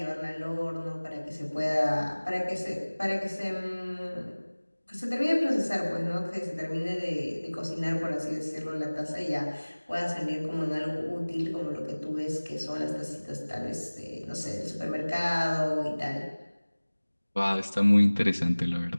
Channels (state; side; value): inverted; both; correlation -1.00